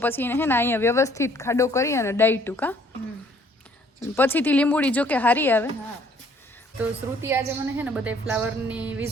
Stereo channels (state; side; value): normal; both; correlation 0.60